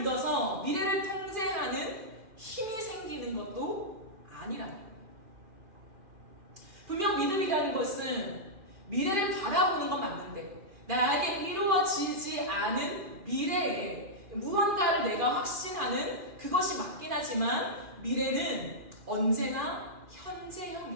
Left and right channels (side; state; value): left; late; 2.4 ms